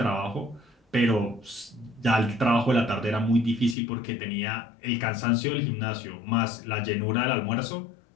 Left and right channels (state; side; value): drops out; right; at 3.8 s